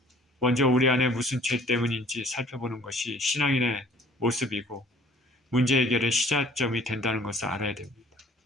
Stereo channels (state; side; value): normal; both; correlation 0.55